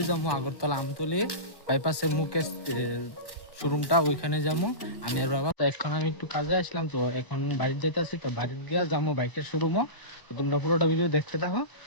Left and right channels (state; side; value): late; right; 1.1 ms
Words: যাবো আগরতলা আমতলি বাইপাসের মুখে শোরুমটা, ওইখানে যাবো আমি আর বাবা। তো এখন আমি একটু কাজে আসলাম, তো এখন বাড়িতে যাইতেছি। তো বাড়িতে গিয়ে যাবো বাইকের শোরুমও। তো তোমরা পুরোটা ভিডিও দেখতে থাকো।